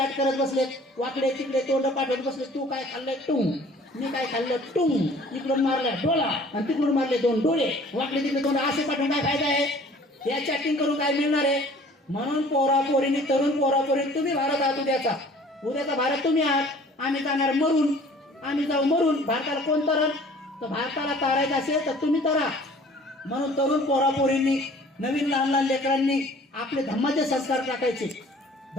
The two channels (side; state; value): both; normal; correlation 0.51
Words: करत बसलेत, वाकडे तिकडे तोंड पाठवत बसले, तू काय खाल्लंय टुंग, मी काय खाल्लं टुंग, इकडून मारलाय डोळा आणि तिकडून मारले 2 डोळे, वाकडे तिकडे तोंड असे पाठवून काय फायदा आहे. या चॅटिंग करून काय मिळणार आहे. म्हणून पोरापोरींनी, तरुण पोरापोरींनी, तुम्ही भारत आहात उद्याचा भारत तुम्ही आहात. आम्ही जाणार मरून, आम्ही जाऊ मरून. भारताला कोण तरण, तर भारताला तारायचं असेल तर तुम्ही तरा. म्हणून तरुण पोरापोरींनी, नवीन लहान लहान लेकरांनी आपले धम्माचे संस्कार टाकायचे.